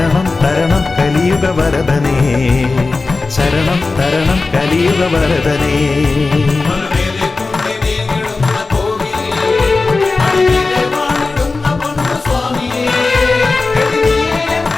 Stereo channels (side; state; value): right; quieter; 3.7 dB